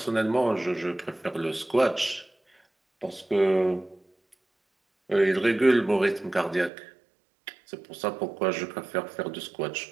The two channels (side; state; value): left; drops out; at 6.7 s